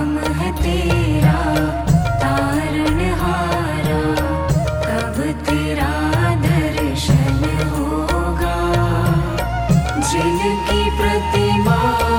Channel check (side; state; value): both; identical; correlation 1.00